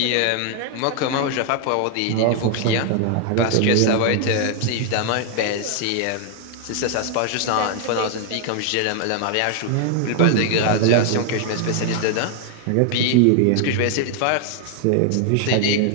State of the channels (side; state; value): both; different; correlation 0.00